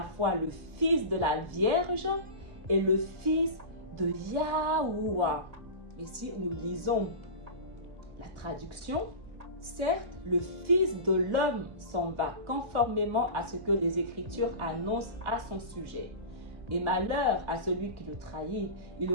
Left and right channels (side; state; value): left; late; 2.0 ms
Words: fois le fils de la Vierge et le fils de Yahuwah. Et si nous lisons la traduction, certes, le Fils de l'homme s'en va conformément à ce que les Écritures annoncent à son sujet. Et malheur à celui qui le trahit, il